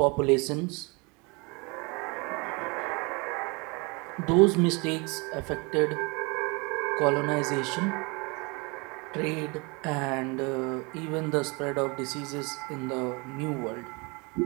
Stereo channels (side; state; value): left; quieter; 28.8 dB